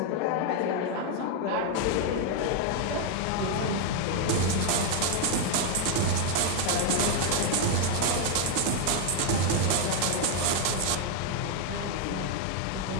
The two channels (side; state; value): both; different; correlation 0.01